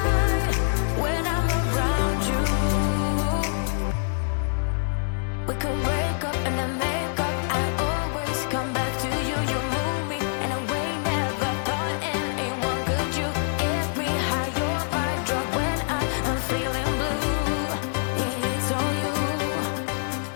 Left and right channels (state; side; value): silent; right; digital silence